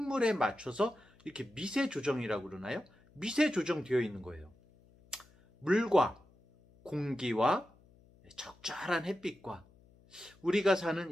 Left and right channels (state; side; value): noise; left; hum, 28 dB below the sound